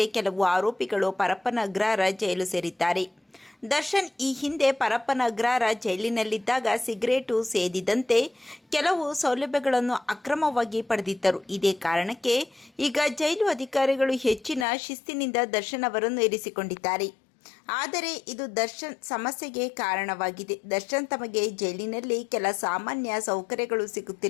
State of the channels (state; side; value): drops out; right; at 14.7 s